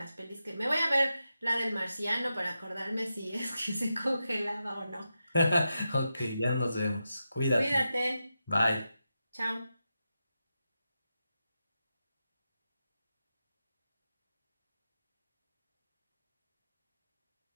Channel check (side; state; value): both; inverted; correlation -0.90